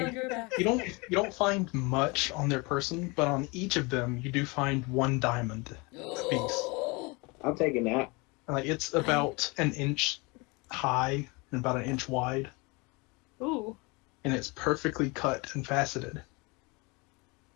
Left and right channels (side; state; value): right; quieter; 27.4 dB